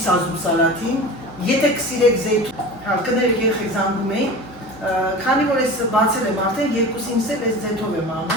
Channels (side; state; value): both; normal; correlation 0.33